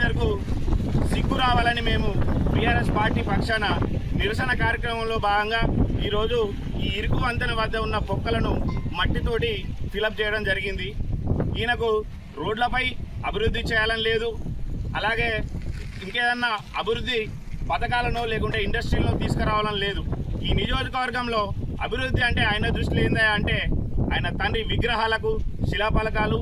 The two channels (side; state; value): both; identical; correlation 1.00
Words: సిగ్గు రావాలని మేము బీఆర్ఎస్ పార్టీ పక్షాన నిరసన కార్యక్రమంలో భాగంగా ఈరోజు ఈ ఇరుకు వంతెన వద్ద ఉన్న పొక్కలను మట్టితోటి ఫిలప్ చేయడం జరిగింది. ఈయనకు రోడ్లపై అభివృద్ధి చేయాలని లేదు, అలాగే ఇంకేదన్నా అభివృద్ధి పథకాలను లేకుంటే ఇండస్ట్రీలను తీసుకురావాలని లేదు. ఈ నియోజకవర్గంలో అభివృద్ధి అంటే ఆయన దృష్టిలో ఏందా అంటే ఆయన తండ్రి విగ్రహాలకు శిలాఫలకాలు